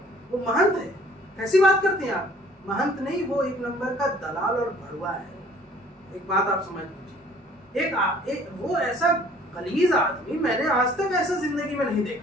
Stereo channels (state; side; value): normal; both; correlation 0.55